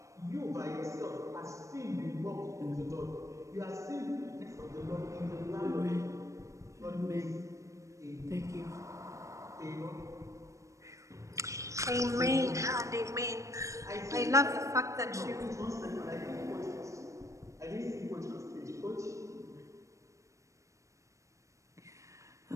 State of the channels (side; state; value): left; late; 0.15 ms